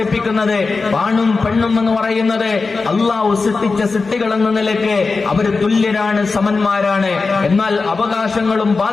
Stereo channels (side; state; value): right; quieter; 4.2 dB